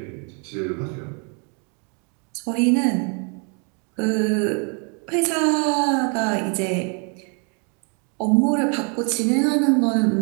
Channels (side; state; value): left; quieter; 37.3 dB